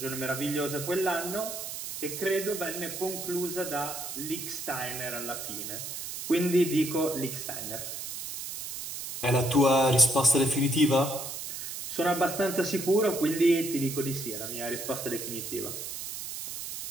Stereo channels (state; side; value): noise; right; hiss, 7 dB below the sound